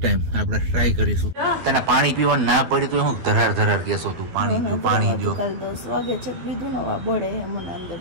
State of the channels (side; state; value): left; late; 12 ms